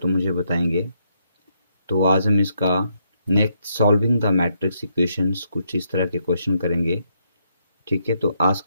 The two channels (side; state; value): both; inverted; correlation -0.76